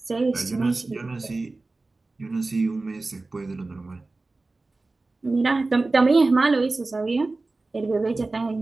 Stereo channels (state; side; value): quieter; left; 3.4 dB